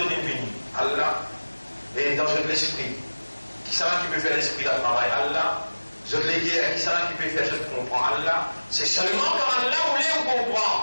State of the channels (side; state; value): both; inverted; correlation -1.00